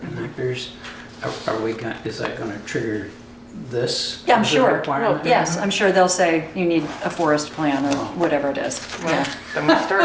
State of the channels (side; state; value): both; identical; correlation 1.00